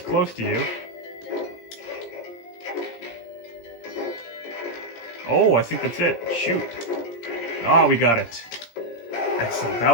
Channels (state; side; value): late; right; 17 ms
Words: to you. Oh, I think that's it. Shoot. Ah, we got it. Excellent. That